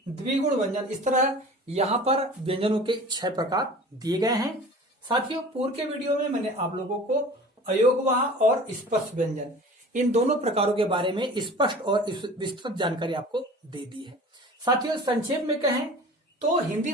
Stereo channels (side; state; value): both; normal; correlation 0.41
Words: द्विगुण व्यंजन। इस तरह यहां पर व्यंजनों के 6 प्रकार दिए गए हैं। साथियों पूर्व के वीडियो में मैंने आप लोगों को अयोगवाह और स्पर्श व्यंजन इन दोनों प्रकारों के बारे में स्पष्ट और विस्तृत जानकारी आपको दे दी है। साथियों संक्षेप में कहें तो हिंदी